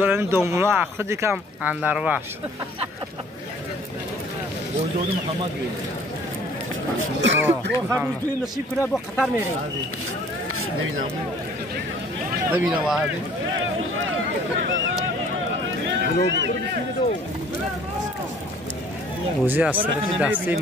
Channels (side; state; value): both; normal; correlation 0.54